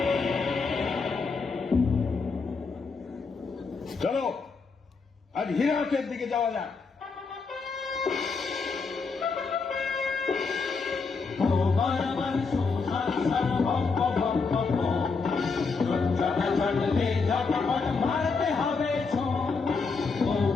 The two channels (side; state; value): right; quieter; 4.6 dB